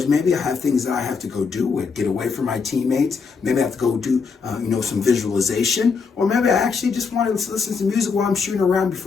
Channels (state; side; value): quieter; right; 5.2 dB